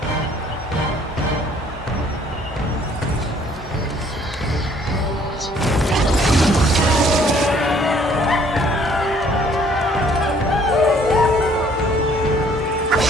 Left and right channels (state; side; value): normal; both; correlation 0.60